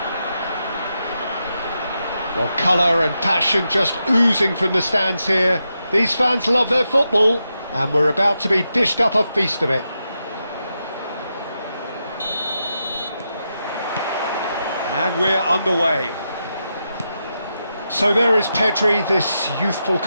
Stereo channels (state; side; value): inverted; both; correlation -0.86